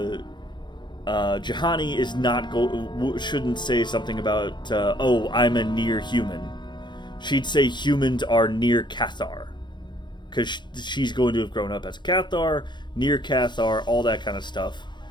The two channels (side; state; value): right; late; 0.22 ms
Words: Juhani is shouldn't say something about, I'm a near human. She'd say humans are near Kotor, because she's going to have grown up as a Kotor, near Kotor, all that kind of stuff.